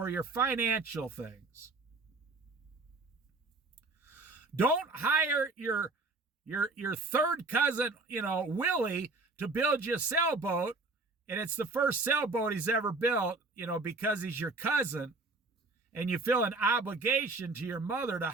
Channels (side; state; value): left; quieter; 3.4 dB